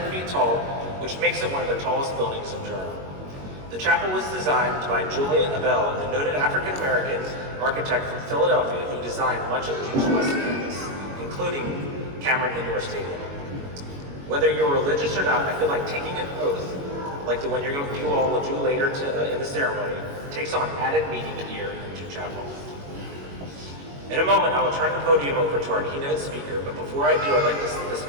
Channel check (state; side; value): late; left; 21 ms